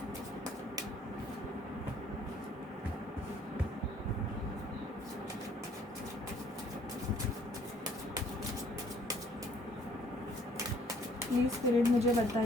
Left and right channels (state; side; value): normal; both; correlation 0.60